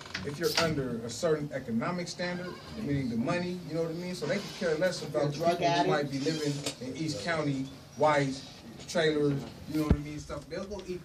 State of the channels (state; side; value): identical; both; correlation 1.00